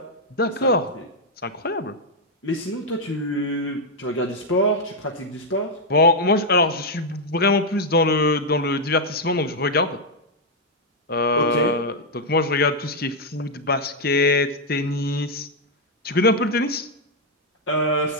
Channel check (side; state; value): both; normal; correlation -0.01